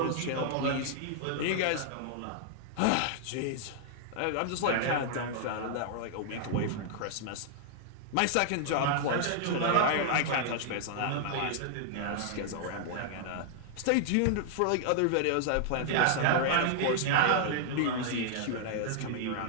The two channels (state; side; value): different; both; correlation -0.01